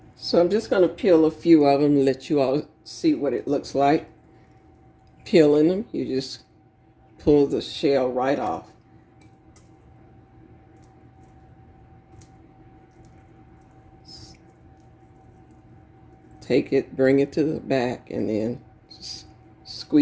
So I'm just going to peel a few of them and let you all see what it looks like. Peeling them, you just pull the shell right off. Take it, bring it to the back, and then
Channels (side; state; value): both; identical; correlation 1.00